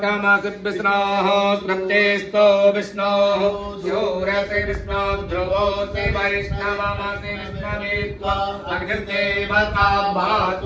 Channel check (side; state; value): both; identical; correlation 1.00